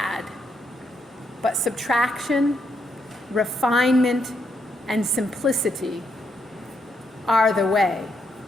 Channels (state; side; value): normal; both; correlation 0.77